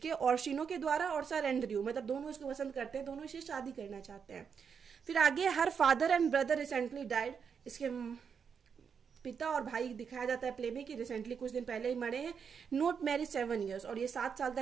ऑर्शिनो के द्वारा और सर एंड्रयू, मतलब दोनों इसको पसंद करते हैं, दोनों इसे शादी करना चाहते हैं। फिर आगे her father and brother recently died, इसके पिता और भाई दिखाया जाता है प्ले में कि रिसेंटली कुछ दिन पहले ही मरे हैं। नोट मैरिज 7 years, और ये 7 साल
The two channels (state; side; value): quieter; left; 6.6 dB